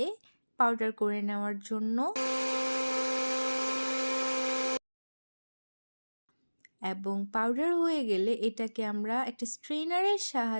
পাউডার করে নেওয়ার জন্য, এবং পাউডার হয়ে গেলে এটাকে আমরা একটা স্ট্রেনারের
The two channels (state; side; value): inverted; both; correlation -1.00